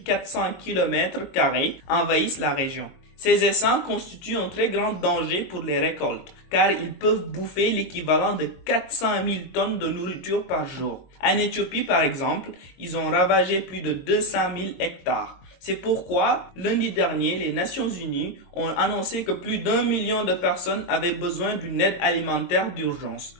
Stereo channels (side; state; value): right; late; 22 ms